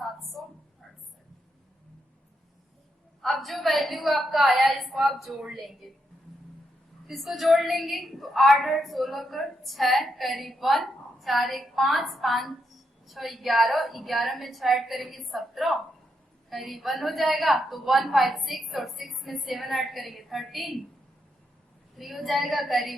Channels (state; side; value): normal; both; correlation 0.81